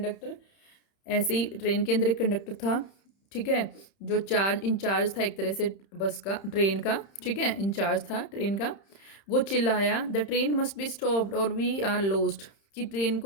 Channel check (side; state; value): right; late; 31 ms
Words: ऐसे ही ट्रेन के अंदर एक कंडक्टर था, ठीक है, जो इंचार्ज था एक तरह से बस का, ट्रेन का, ठीक है, इंचार्ज था ट्रेन का। वो चिल्लाया, the train must be stopped और वी आर लॉस्ट, कि ट्रेन